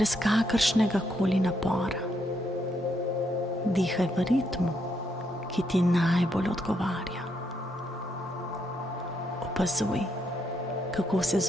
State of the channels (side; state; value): both; normal; correlation 0.77